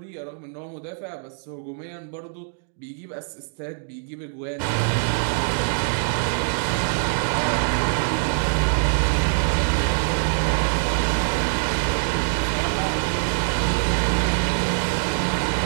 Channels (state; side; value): silent; left; digital silence